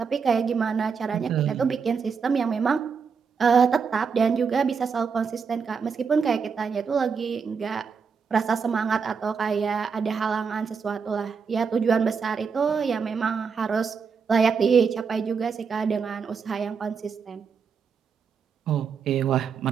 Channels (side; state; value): left; quieter; 5.9 dB